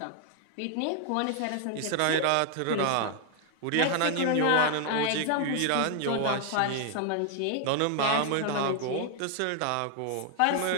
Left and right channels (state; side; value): different; both; correlation 0.00